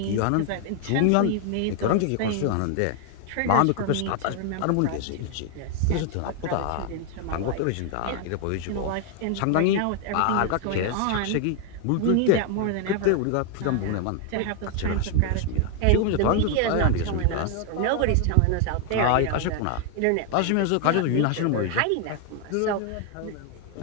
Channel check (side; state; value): both; different; correlation 0.00